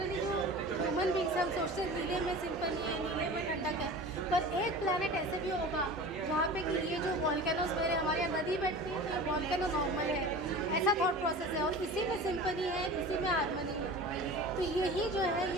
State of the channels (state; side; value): normal; both; correlation 0.36